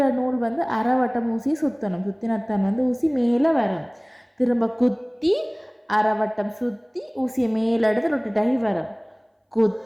நூல் வந்து அரைவட்டம் ஊசியை சுற்றணும். சுற்றினத்தான் வந்து ஊசி மேலே வரும். திரும்ப குத்தி அரைவட்டம் சுற்றி ஊசியை மேலே எடுத்து ரொட்டேட் ஆகி வரும்.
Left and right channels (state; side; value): identical; both; correlation 1.00